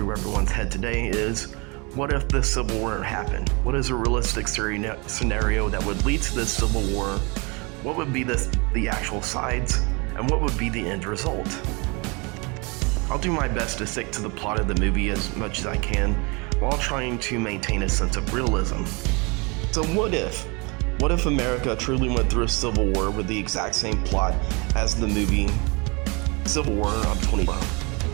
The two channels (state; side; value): quieter; left; 29.2 dB